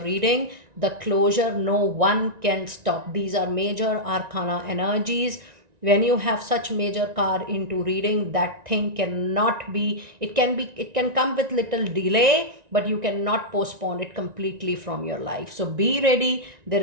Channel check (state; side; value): late; left; 1.9 ms